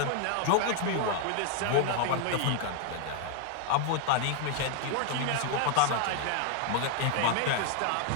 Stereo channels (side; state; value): both; different; correlation 0.01